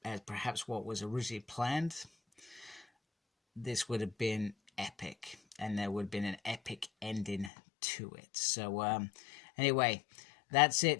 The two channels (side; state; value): right; drops out; at 7.5 s